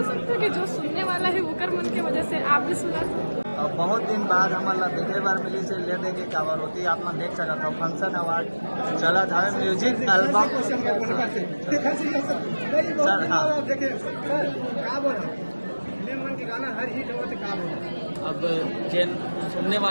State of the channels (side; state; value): both; inverted; correlation -1.00